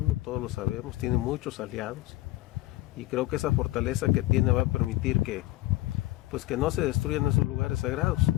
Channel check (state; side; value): quieter; right; 17.4 dB